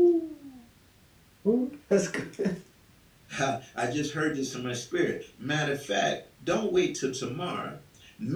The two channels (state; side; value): identical; both; correlation 1.00